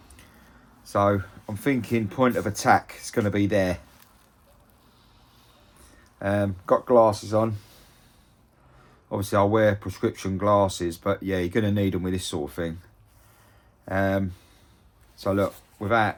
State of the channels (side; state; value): both; identical; correlation 1.00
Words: So I'm thinking point of attack is going to be there. Got glasses on. Obviously I'll wear prescription glasses, but yeah, you're going to need them with this sort of thing. So look,